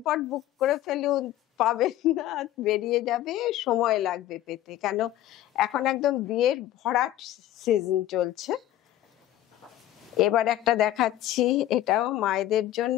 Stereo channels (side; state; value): right; quieter; 13.5 dB